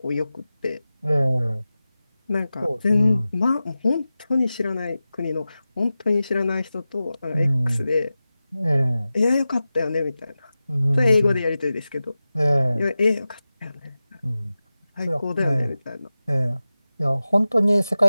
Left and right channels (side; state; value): both; inverted; correlation -0.95